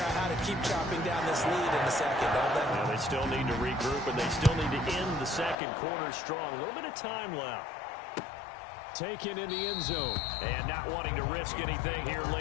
out how to keep chopping down this lead in the second, don't they? Well, they still need to regroup, and they still need to end the second quarter strong. A little bit of time left. Taken in the end zone. And not wanting to risk anything here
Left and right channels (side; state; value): right; drops out; at 5.6 s